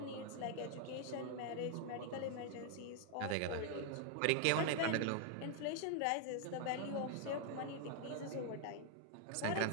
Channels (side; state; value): both; different; correlation 0.00